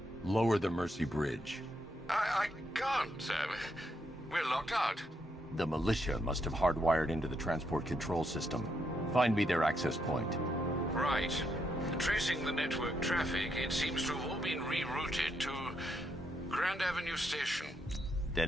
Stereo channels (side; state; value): both; normal; correlation 0.78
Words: Lower the Mercy Bridge. I can't, sir. We're locked out. The militia must have hardwired into the transport control system. Find me their access point. Right. Tracing the network traffic, it seems to have all been rerouted to Grand Avenue Station.